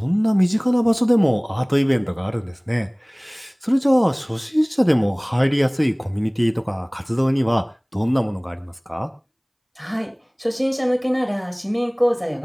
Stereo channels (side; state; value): both; identical; correlation 1.00